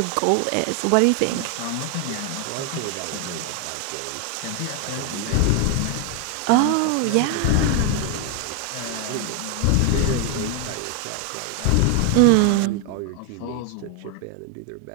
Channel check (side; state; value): both; different; correlation 0.01